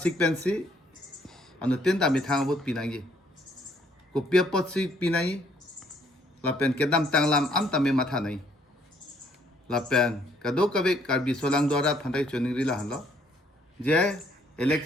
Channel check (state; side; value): normal; both; correlation 0.66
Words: पेन सी अनु तीन ता मिथांग भूत पिनांगी कुपिया पत्सी पिनांगी लपेन के दाम तंगलाम आम तमे माथा नहीं लपेन कदो कभी कार्बी सोलांग द्वारा फंटाई चुनिंग रिला हलो जे